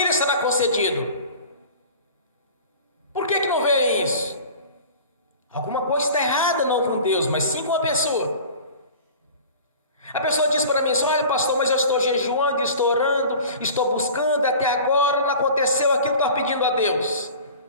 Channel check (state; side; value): inverted; both; correlation -0.41